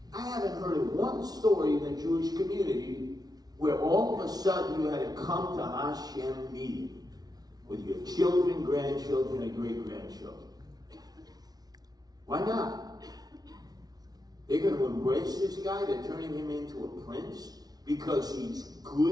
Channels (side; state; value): left; late; 0.19 ms